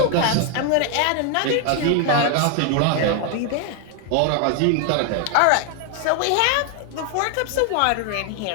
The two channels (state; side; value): different; both; correlation 0.00